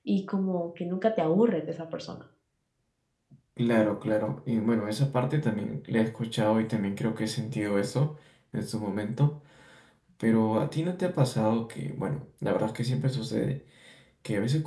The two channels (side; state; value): both; identical; correlation 1.00